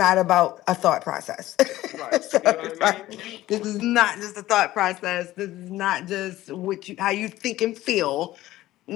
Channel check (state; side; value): quieter; right; 15.7 dB